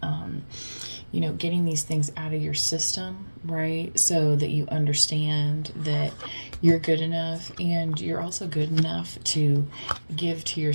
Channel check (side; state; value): both; inverted; correlation -1.00